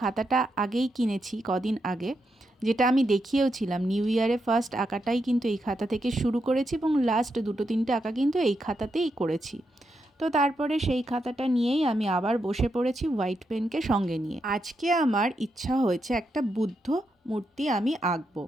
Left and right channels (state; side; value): normal; both; correlation 0.83